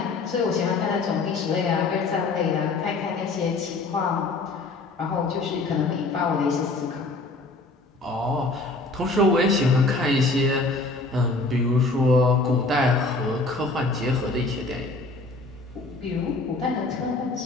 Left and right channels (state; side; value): quieter; right; 3.3 dB